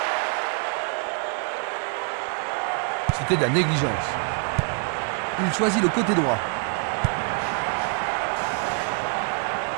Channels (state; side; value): quieter; left; 38.7 dB